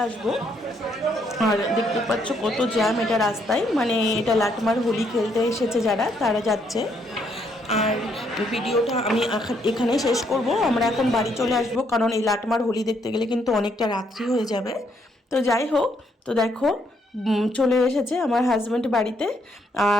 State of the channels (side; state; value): both; normal; correlation 0.72